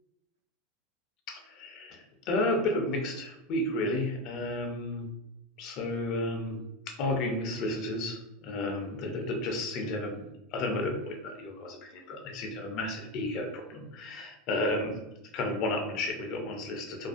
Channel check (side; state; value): both; normal; correlation 0.16